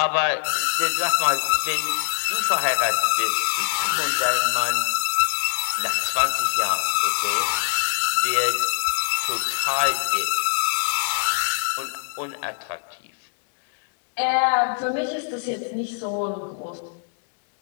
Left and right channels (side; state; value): right; silent; digital silence